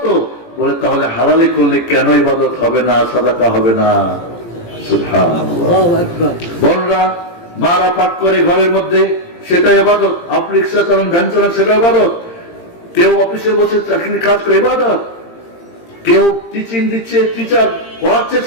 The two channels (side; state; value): right; late; 17 ms